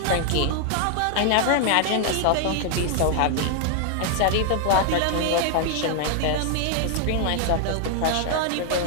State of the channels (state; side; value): different; both; correlation 0.00